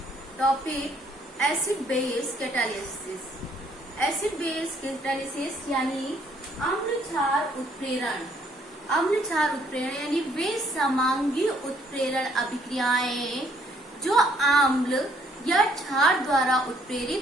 topic acid base catalysis. Acid base catalysis यानी अम्ल क्षार उत्प्रेरण। अम्ल क्षार उत्प्रेरण यानी वे समांगी उत्प्रेरण अभिक्रियाएं जो अम्ल या क्षार द्वारा उत्प्रेरित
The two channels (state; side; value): normal; both; correlation 0.66